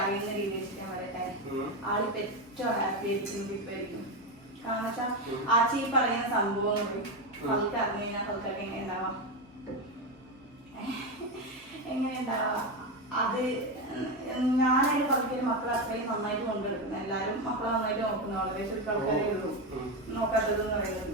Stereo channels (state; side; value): normal; both; correlation 0.13